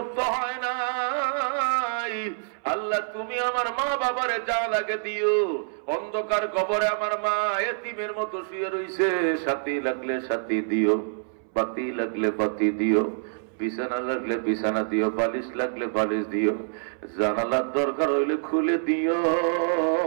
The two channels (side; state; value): left; silent; 61 dB below the other